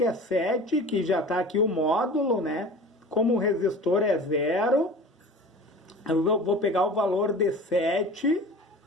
é 7, que já está aqui o módulo, né? Como o resistor é 0, eu vou pegar o valor de 7,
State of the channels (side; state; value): both; normal; correlation 0.38